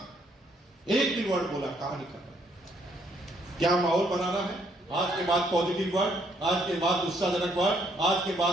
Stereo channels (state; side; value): normal; both; correlation 0.69